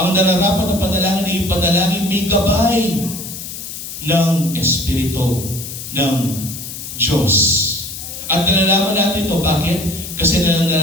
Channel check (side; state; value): left; noise; hiss, 9 dB below the sound